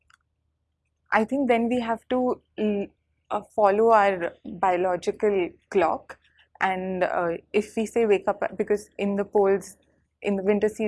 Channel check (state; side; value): identical; both; correlation 1.00